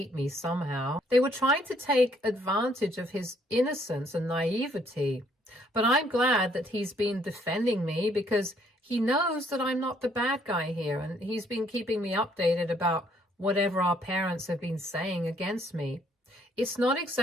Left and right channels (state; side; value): normal; both; correlation 0.66